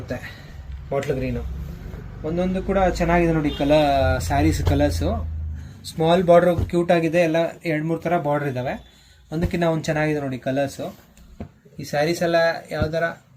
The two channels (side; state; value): both; identical; correlation 1.00